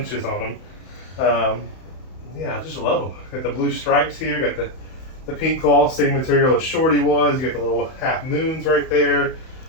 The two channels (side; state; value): right; late; 31 ms